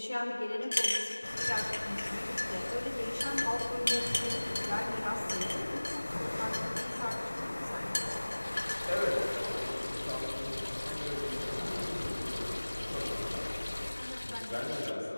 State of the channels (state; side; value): inverted; both; correlation -1.00